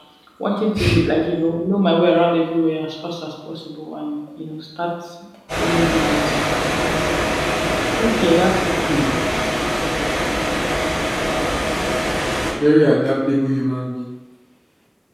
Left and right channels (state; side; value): identical; both; correlation 1.00